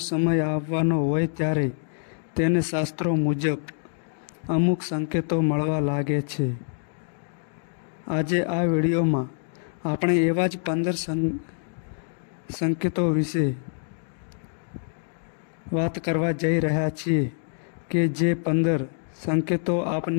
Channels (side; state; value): right; silent; digital silence